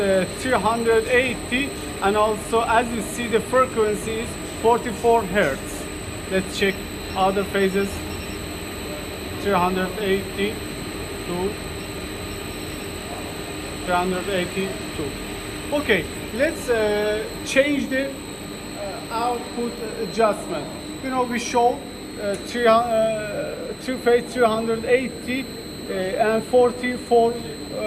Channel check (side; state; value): both; identical; correlation 1.00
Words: 380, and also as you see the frequency is 44 hertz. Let's check other phases. 380 to 382. Okay, let's change the output adjustment. You know, we show three phase 380 and 44